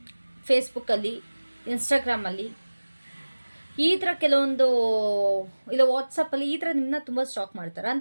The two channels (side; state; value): both; inverted; correlation -1.00